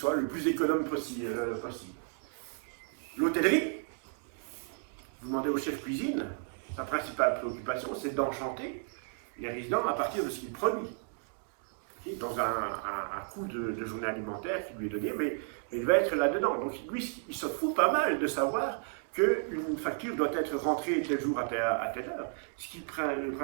le plus économe possible. L'hôtellerie, vous demandez au chef cuisine, sa principale préoccupation, c'est d'enchanter les résidents à partir de ce qu'il produit. Dans un coût de journée alimentaire qui lui est donné, mais il va être là-dedans. Donc lui, il se fout pas mal de savoir qu'une facture doit être rentrée tel jour à telle heure. Ce qui est le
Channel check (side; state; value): left; silent; 56 dB below the other